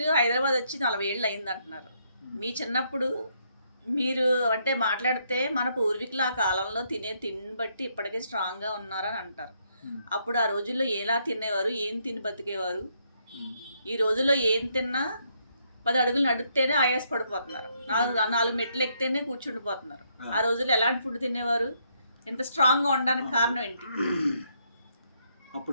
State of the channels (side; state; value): both; inverted; correlation -0.73